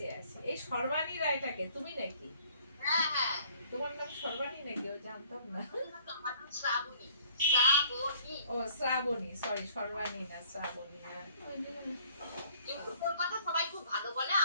আসি। এই সর্বাণী রায়টাকে তুমি নাকি? হ্যাঁ হ্যাঁ তোমার নাম সর্বাণী নাকি? ও জানতাম না। আমার নাম শ্রাবণী। শ্রাবণী। ও শ্রাবণী, সরি সর্বাণী না, শ্রাবণী। হ্যাঁ। কিন্তু তোর কথা সবাই খুব ভালো বলে,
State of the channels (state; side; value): inverted; both; correlation -0.58